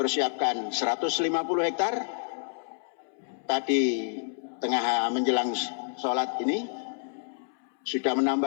150 hektar. Tadi tengah menjelang sholat ini sudah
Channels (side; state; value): right; silent; 59 dB below the other